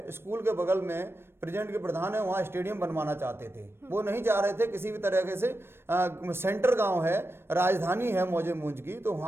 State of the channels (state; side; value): late; left; 0.12 ms